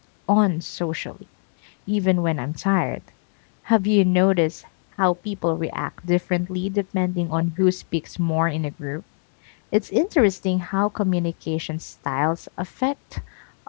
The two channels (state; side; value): silent; right; 63 dB below the other